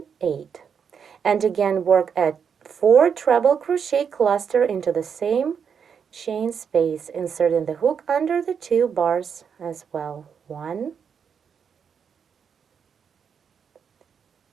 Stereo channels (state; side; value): quieter; left; 7.0 dB